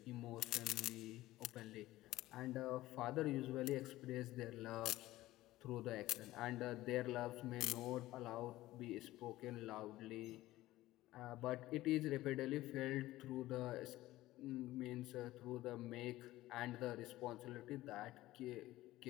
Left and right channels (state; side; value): quieter; right; 16.6 dB